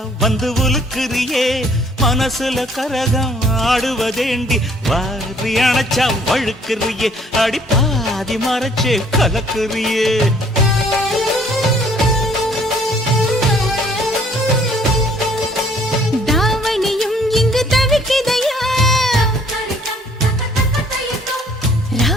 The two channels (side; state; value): both; normal; correlation 0.60